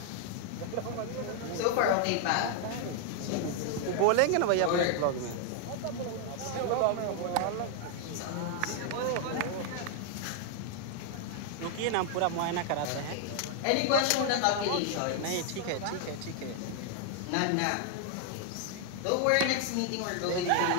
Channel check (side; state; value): both; different; correlation 0.00